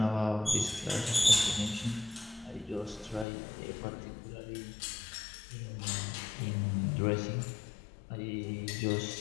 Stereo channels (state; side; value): drops out; right; at 3.2 s